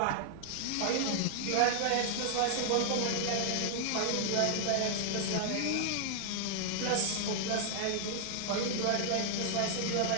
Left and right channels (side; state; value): both; different; correlation -0.01